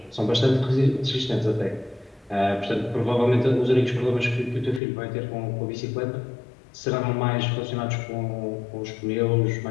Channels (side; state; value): right; drops out; at 4.8 s